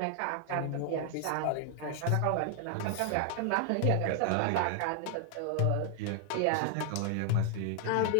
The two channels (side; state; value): both; different; correlation 0.00